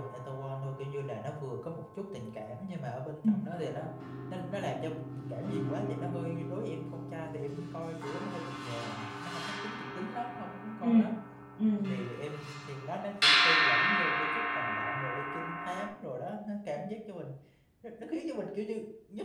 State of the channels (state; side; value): identical; both; correlation 1.00